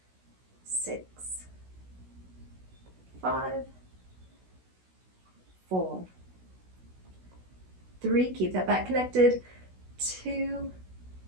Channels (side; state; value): left; late; 16 ms